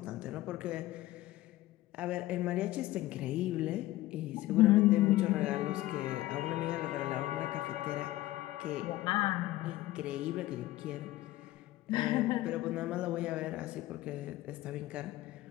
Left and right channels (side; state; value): right; quieter; 16.5 dB